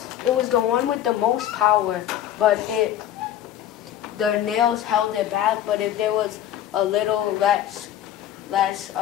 the one with the most power, but the nails held it back. But if there was a little less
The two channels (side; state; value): right; quieter; 11.3 dB